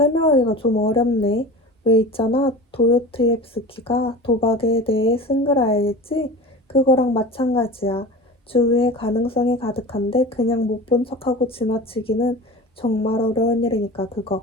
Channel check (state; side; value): normal; both; correlation 0.34